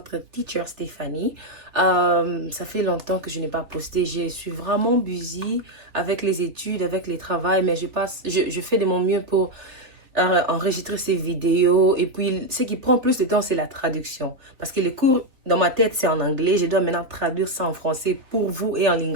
teacher Stéphanie. Ça fait longtemps que je n'ai pas posté, je suis vraiment busy avec les études, avec les travails, mais je fais de mon mieux pour enregistrer ces vidéos. Et puis, ce qui prend plus de temps, c'est la traduction. Parce que les cours, dans ma tête, c'est en anglais. Je dois maintenant traduire ça en français pour vous et en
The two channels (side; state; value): left; late; 3.2 ms